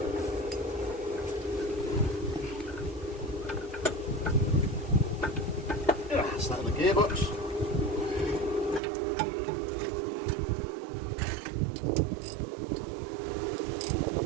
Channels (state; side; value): drops out; left; at 8.8 s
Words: Start the gearbox.